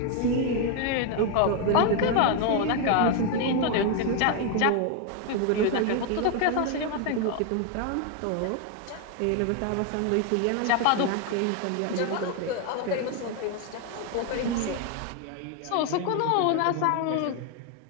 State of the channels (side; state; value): both; different; correlation 0.01